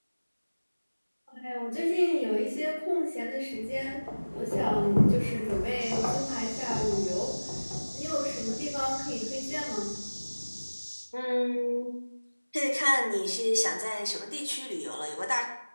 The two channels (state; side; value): inverted; both; correlation -1.00